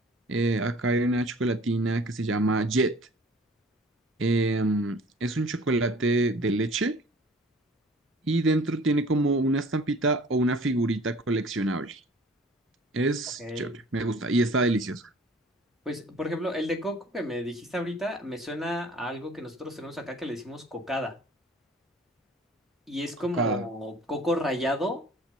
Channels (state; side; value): normal; both; correlation 0.49